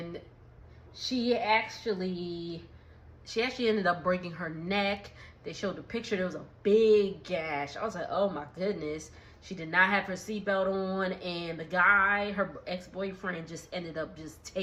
she actually ended up breaking her neck. They showed the picture. There was a big gash. I was like, oh, my goodness. She did not have her seatbelt on. And the guy, her ex-boyfriend, just ended up just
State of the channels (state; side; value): identical; both; correlation 1.00